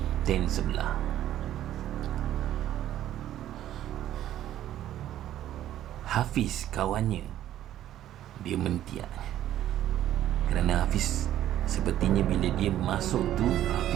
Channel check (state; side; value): quieter; left; 12.4 dB